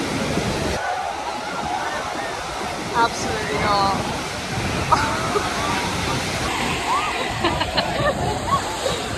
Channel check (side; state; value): both; identical; correlation 1.00